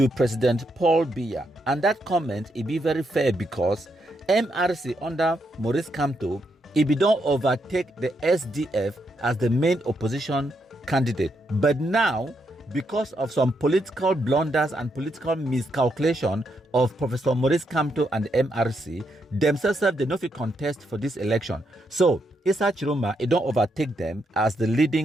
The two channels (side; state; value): both; normal; correlation 0.79